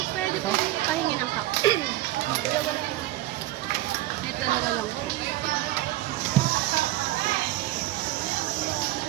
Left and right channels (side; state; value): left; quieter; 16.5 dB